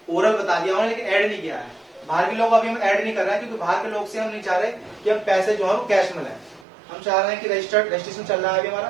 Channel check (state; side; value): drops out; left; at 6.7 s